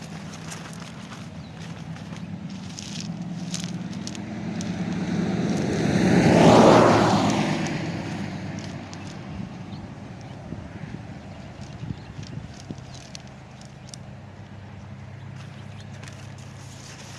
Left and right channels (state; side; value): identical; both; correlation 1.00